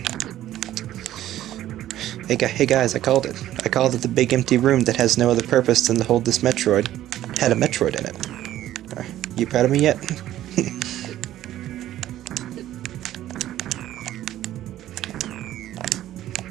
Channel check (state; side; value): quieter; left; 13.2 dB